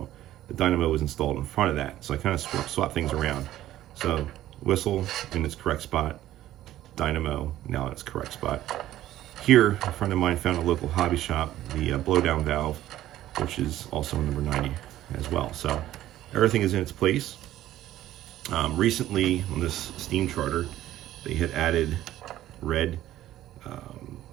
The dynamo was installed in front of that, so I kind of swap things around. So whistle in its correct spot, dynamo now in its correct spot. Here, a friend of mine found a local hobby shop the blowdown valve, which is also number 90 as well. So everything is in its place. Recently on this steam charter, they had added red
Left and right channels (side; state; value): left; quieter; 13.7 dB